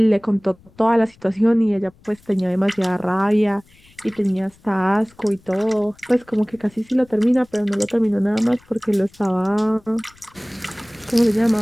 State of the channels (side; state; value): left; noise; rumble, 29 dB below the sound